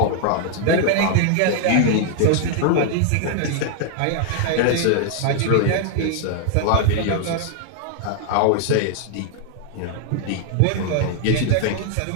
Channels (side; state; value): both; different; correlation 0.00